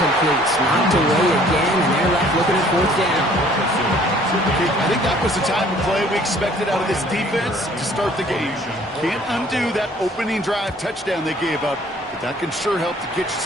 Knocked away again, and they're left looking at 4th down. I think that was the type of play we expected out of this defense to start the game. Can't undo that opening drive touchdown they gave up, but that can sure help to get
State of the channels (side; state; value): both; normal; correlation 0.57